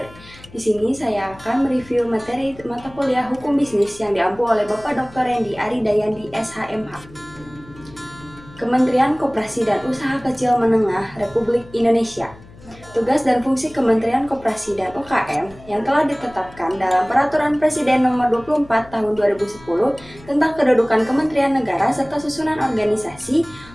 Di sini saya akan mereview materi mata kuliah Hukum Bisnis yang diampu oleh Bapak Dr. Rendi Aridayandi SHMH. Kementerian Koperasi dan Usaha Kecil Menengah Republik Indonesia. Tugas dan fungsi Kementerian Koperasi dan UKM yang telah ditetapkan dalam Peraturan Presiden Nomor 24 Tahun 2010 tentang kedudukan Kementerian Negara serta susunan organisasi,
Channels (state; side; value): noise; left; hum, 21 dB below the sound